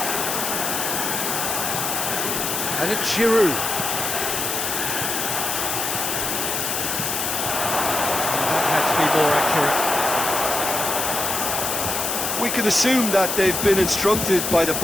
And it's Giroud. That had to be more accurate. We can assume that they've been instructed by the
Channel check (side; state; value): left; noise; hiss, 1 dB below the sound